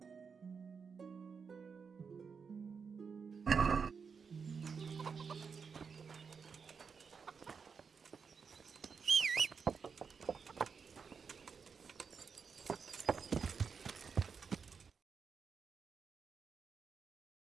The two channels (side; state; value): left; quieter; 5.8 dB